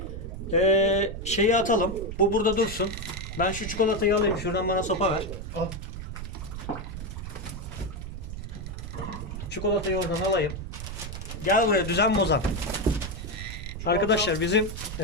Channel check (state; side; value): noise; right; rumble, 8 dB below the sound